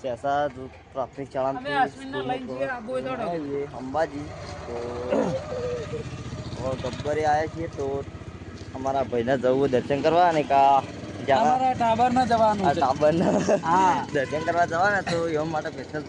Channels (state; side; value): identical; both; correlation 1.00